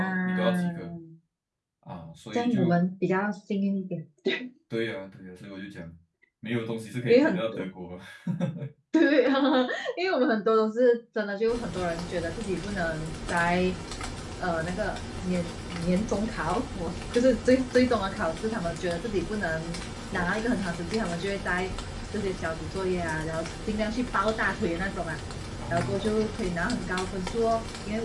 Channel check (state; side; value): identical; both; correlation 1.00